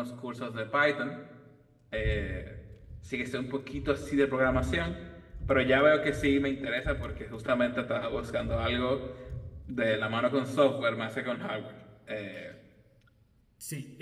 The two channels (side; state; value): both; identical; correlation 1.00